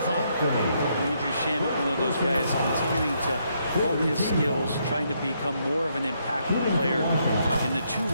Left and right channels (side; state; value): both; inverted; correlation -0.75